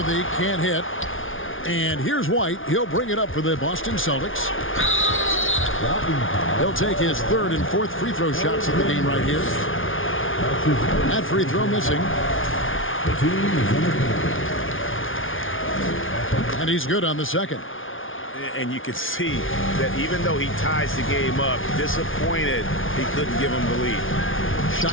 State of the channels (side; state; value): right; late; 0.58 ms